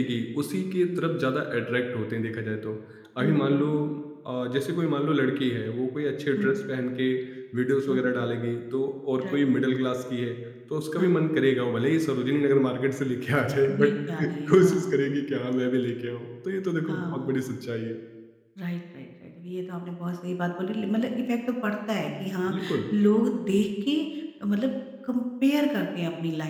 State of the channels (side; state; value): both; identical; correlation 1.00